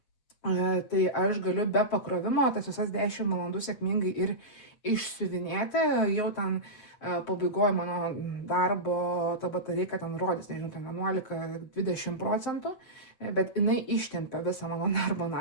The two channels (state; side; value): late; right; 7.7 ms